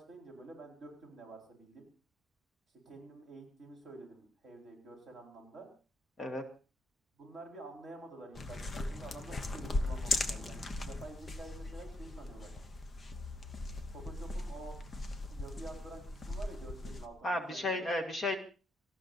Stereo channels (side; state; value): both; normal; correlation 0.78